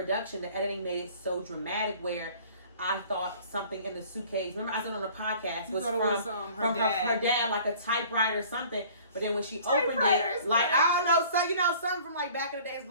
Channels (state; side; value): inverted; both; correlation -0.51